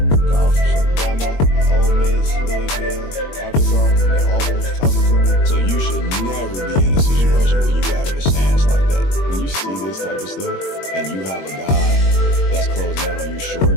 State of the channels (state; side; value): late; right; 21 ms